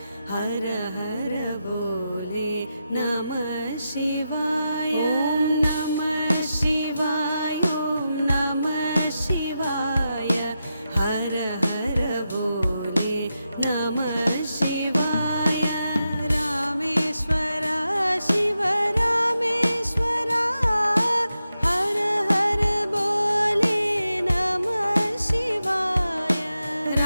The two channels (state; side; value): inverted; both; correlation -0.88